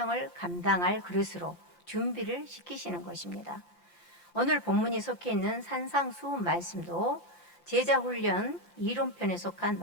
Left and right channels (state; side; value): late; right; 5.8 ms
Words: 감당할 그릇으로 준비를 시키시는 것입니다. 오늘 본문이 속해 있는 산상수훈 말씀도 제자훈련 이론편에 속한